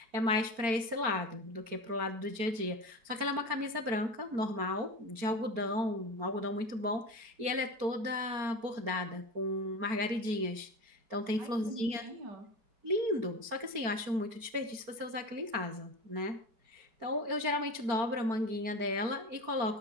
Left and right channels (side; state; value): left; late; 4.4 ms